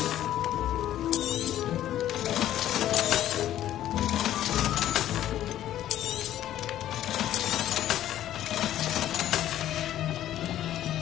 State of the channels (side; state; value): right; quieter; 12.4 dB